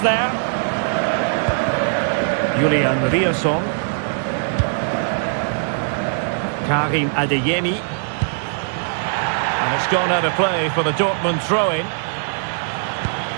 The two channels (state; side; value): silent; left; digital silence